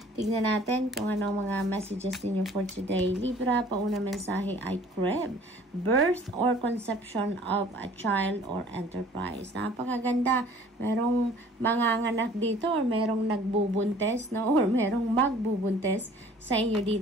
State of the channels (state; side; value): normal; both; correlation 0.52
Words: Tignan natin kung ano mga messages ninyo for today. Libra, pauna mensahe ay crib. Birth or conception of a child or enterprise. Napakaganda. Merong manganganak dito or merong nagbubuntes, no? Or merong magbubuntes sa inyo